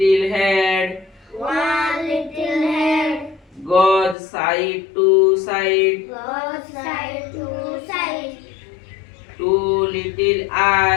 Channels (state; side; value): drops out; right; at 4.2 s